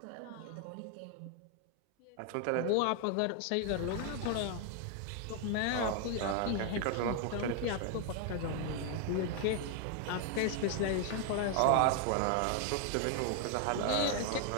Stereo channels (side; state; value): both; different; correlation 0.00